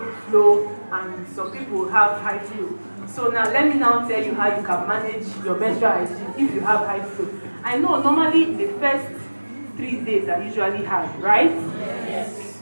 flow and some people have high flow. So now let me now tell you how you can manage your menstrual hygiene if you have high flow. I know normally the first 3 days are usually hard, right? Yes.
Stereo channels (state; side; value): inverted; both; correlation -1.00